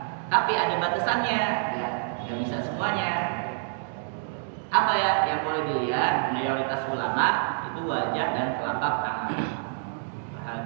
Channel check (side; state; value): left; silent; digital silence